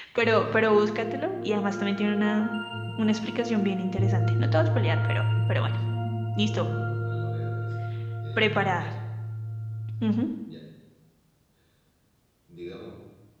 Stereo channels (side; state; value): both; identical; correlation 1.00